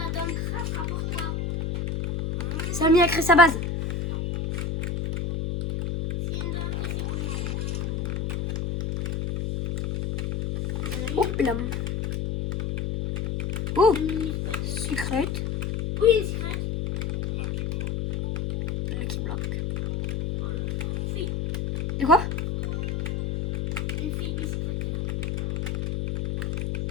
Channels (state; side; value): noise; left; hum, 1 dB below the sound